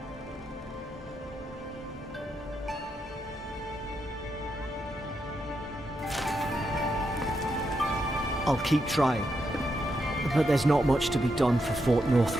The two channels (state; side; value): normal; both; correlation 0.82